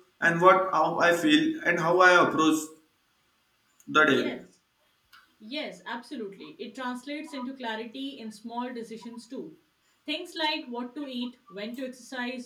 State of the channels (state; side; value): identical; both; correlation 1.00